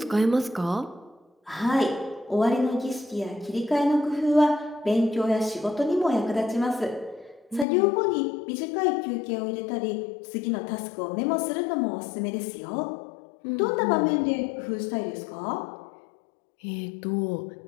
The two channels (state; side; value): drops out; right; at 7.7 s